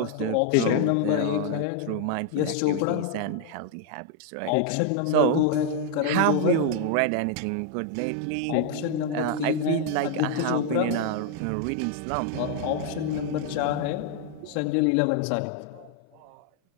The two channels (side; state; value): both; different; correlation 0.00